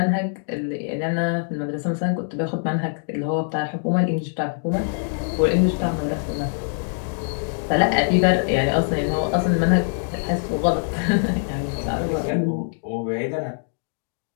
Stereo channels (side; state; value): right; silent; digital silence